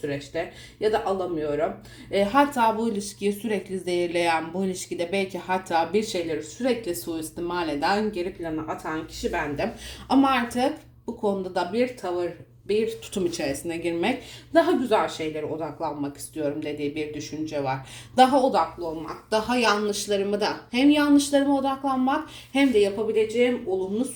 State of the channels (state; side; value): identical; both; correlation 1.00